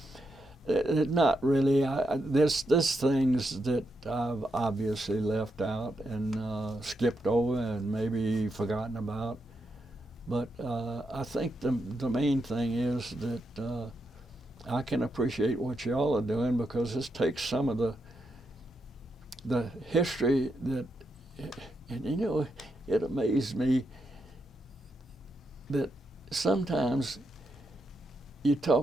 not really. There's things that I've obviously left out and skipped over and maybe forgotten about. But I think the main thing is that I can appreciate what y'all are doing, because this takes some of the history that, and you know, it amazed me that sometimes you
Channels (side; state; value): both; normal; correlation 0.83